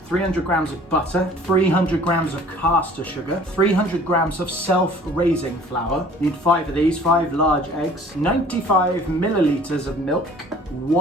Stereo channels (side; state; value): both; normal; correlation 0.51